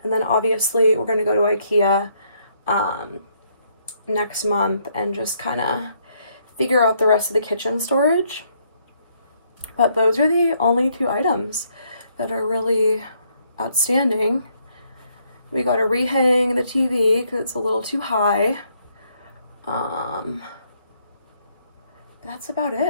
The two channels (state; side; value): inverted; both; correlation -0.71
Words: And then obviously we're going to go to IKEA next month and just kind of figure out the rest of the kitchen storage. But those are the only 2 items that are really outstanding. We got to rehang the TV because it's a little too high. That's about